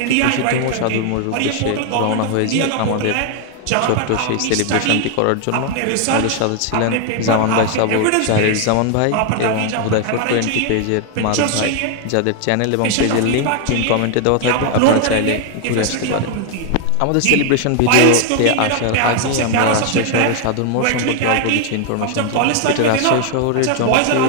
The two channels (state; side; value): different; both; correlation 0.01